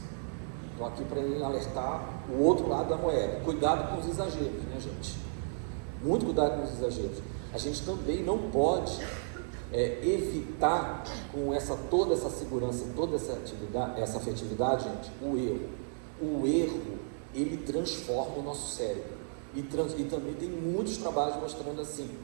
estou aqui para alertar o outro lado da moeda. Cuidado com os exageros, né, gente? Muito cuidado com os exageros. A gente também não pode evitar, com toda essa segurança, toda essa afetividade, gente, o erro. O erro, ele transforma o nosso cérebro. E também tem muitos trabalhos mostrando assim,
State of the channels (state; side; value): silent; left; 56 dB below the other